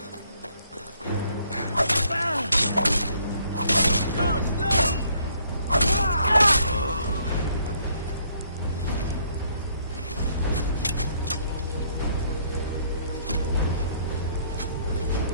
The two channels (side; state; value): both; inverted; correlation -0.66